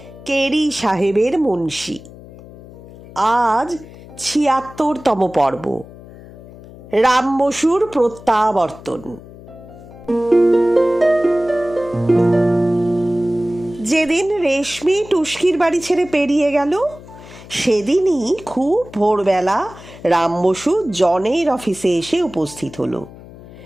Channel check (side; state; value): left; noise; hum, 18 dB below the sound